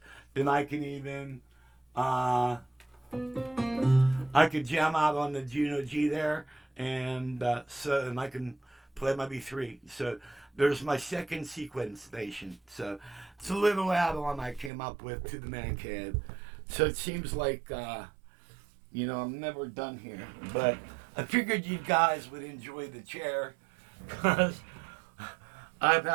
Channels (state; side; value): drops out; left; at 14.7 s